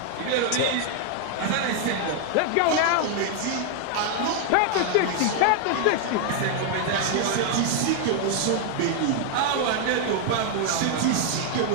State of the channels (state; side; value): different; both; correlation 0.00